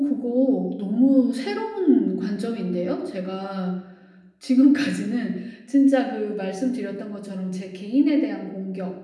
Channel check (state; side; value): identical; both; correlation 1.00